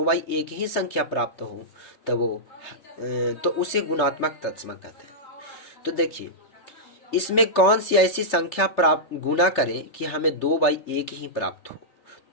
ही संख्या प्राप्त हो तो उसे गुणात्मक तत्समक कहते हैं। तो देखिए इसमें कौन सी ऐसी संख्या प्राप्त गुना करें कि हमें 2/1 ही प्राप्त हो,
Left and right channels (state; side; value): late; right; 3.3 ms